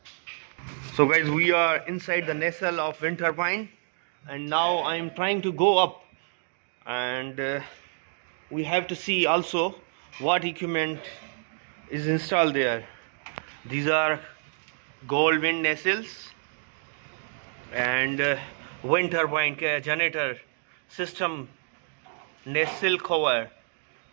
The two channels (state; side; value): silent; left; 59 dB below the other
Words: So guys, we are inside the nacelle of wind turbine, and now I am trying to go up, and we have to see also what equipment is installed there. These are Goldwind nacelles and wind turbine generator system, nacelle cover,